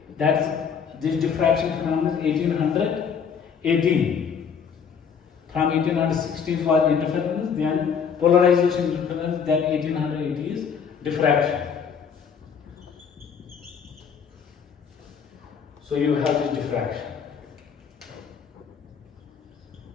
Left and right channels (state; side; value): quieter; right; 6.8 dB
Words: this diffraction phenomenon is 1818. From 1816 was interference, then polarization interference, then 1880 is diffraction. So you have this diffraction.